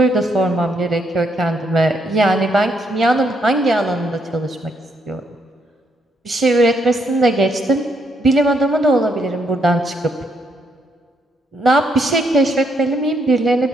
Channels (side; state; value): both; normal; correlation 0.74